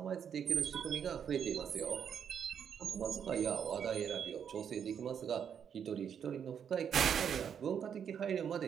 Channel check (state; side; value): quieter; left; 8.0 dB